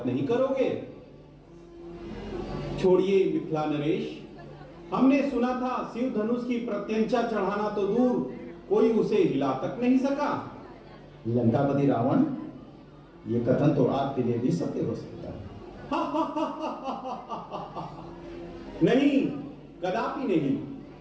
नहीं करोगे? छोड़िए मिथिला नरेश, हमने सुना था शिव धनुष की प्रत्यंचा चढ़ाना तो दूर, कोई उसे हिला तक नहीं सका। लंकापति रावण, ये कथन तो आपके लिए भी सत्य हो सकता है। नहीं, कदापि नहीं।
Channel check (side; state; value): both; identical; correlation 1.00